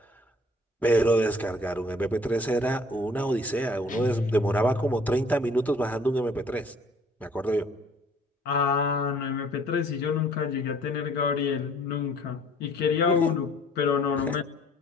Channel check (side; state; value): both; normal; correlation 0.57